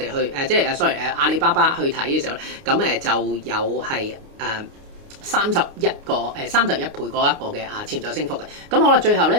去即係sorry阿里巴巴去睇嘅時候咧，咁就有係31倍嗰一個嘅潛在升幅嘅。咁好啦，最後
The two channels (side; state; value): left; late; 29 ms